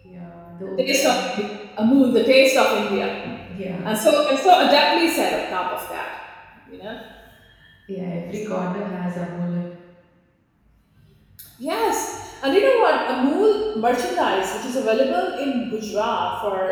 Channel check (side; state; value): both; identical; correlation 1.00